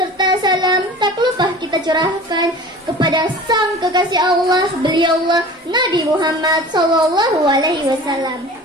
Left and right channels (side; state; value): both; normal; correlation 0.40